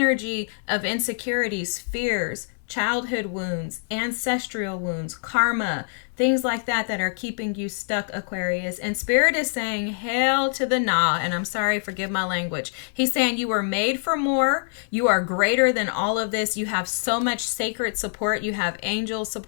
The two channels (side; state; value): right; silent; 62 dB below the other